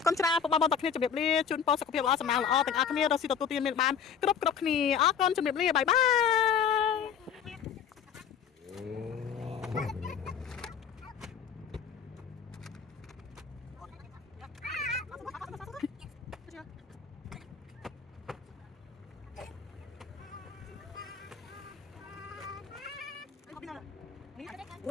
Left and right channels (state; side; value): quieter; right; 7.4 dB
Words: គុណច្រើនពុកបងប្អូនទាំងគ្នាជម្រាបលាជូនពរសុខភាពល្អសំណាងល្អទាំងអស់គ្នារកស៊ីទទួលទានមានបានគ្រប់គ្នាអរគុណជម្រាបលាបាយបា